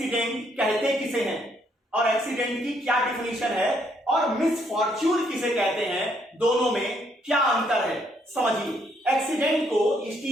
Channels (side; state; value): both; normal; correlation 0.71